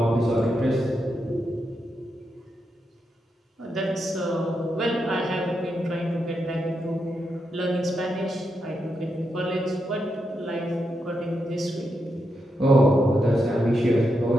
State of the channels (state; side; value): normal; both; correlation 0.84